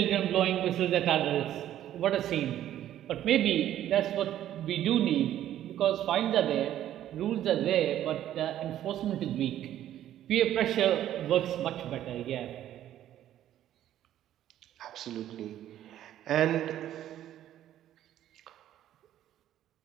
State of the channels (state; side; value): quieter; left; 12.0 dB